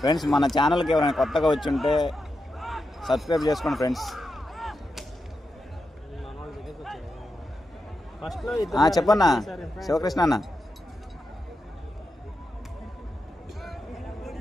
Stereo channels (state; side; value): normal; both; correlation 0.88